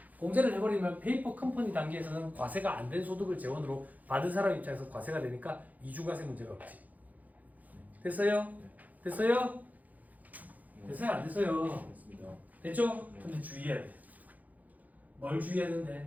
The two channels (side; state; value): left; late; 0.079 ms